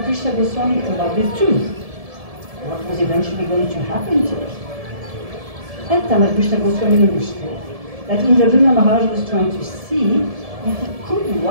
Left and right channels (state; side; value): late; left; 1.7 ms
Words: Krishna Goswami about the tooth. What was eventually going to happen to it? And Tamal Krishna Goswami understood that Indradurya Maharaj was trying to see if he could